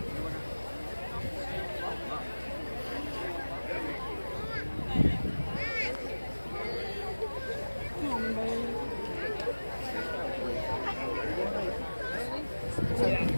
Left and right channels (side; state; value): both; inverted; correlation -1.00